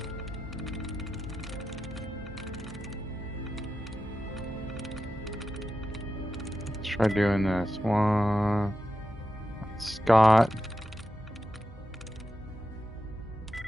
Let's try doing this one. Scott.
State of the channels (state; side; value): normal; both; correlation 0.90